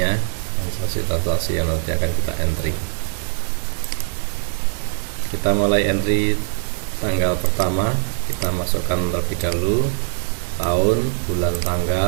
transaksi yang nanti akan kita entry. Kita mulai entry tanggal pertama, kita masukkan terlebih dahulu tahun, bulan,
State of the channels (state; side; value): silent; left; digital silence